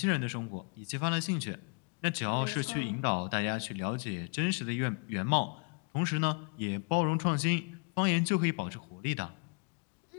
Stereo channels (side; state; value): right; quieter; 38.7 dB